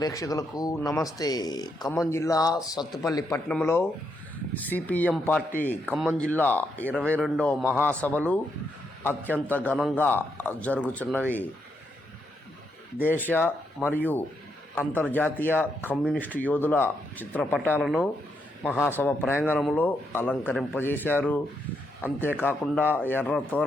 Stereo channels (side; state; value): both; normal; correlation 0.79